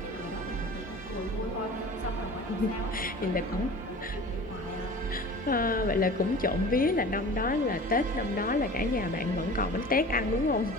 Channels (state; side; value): normal; both; correlation 0.40